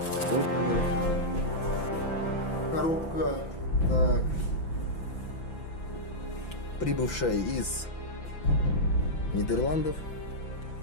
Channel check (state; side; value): late; right; 5.9 ms